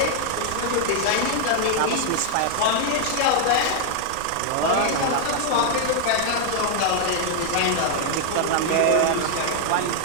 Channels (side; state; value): both; different; correlation 0.00